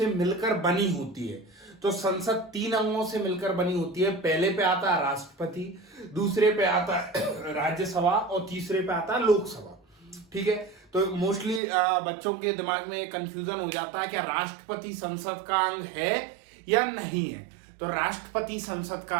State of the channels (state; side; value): drops out; left; at 11.6 s